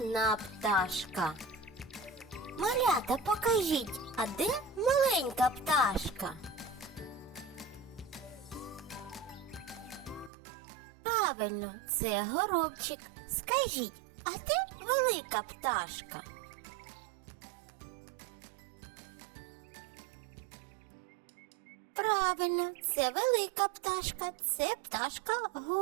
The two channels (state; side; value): drops out; left; at 10.3 s